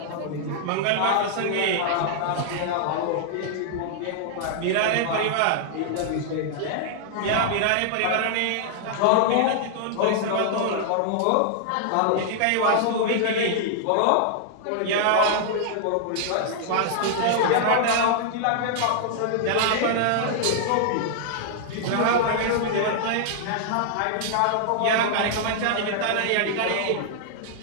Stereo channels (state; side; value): different; both; correlation -0.01